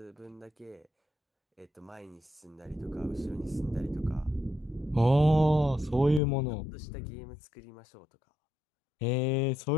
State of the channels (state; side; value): drops out; right; at 6.2 s